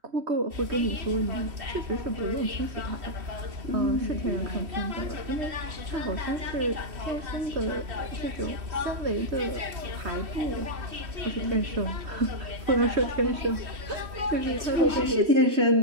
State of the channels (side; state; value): left; late; 3.1 ms